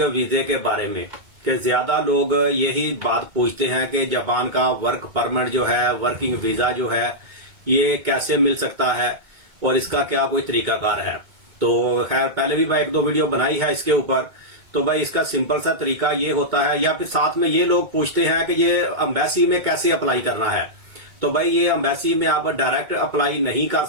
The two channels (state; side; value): late; left; 2.2 ms